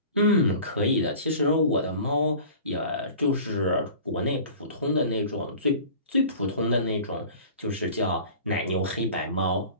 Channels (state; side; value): inverted; both; correlation -0.42